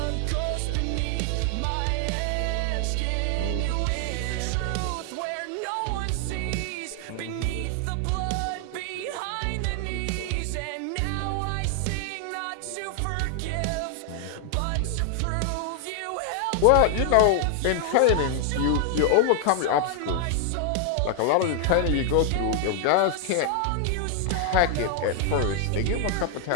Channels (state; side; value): different; both; correlation 0.00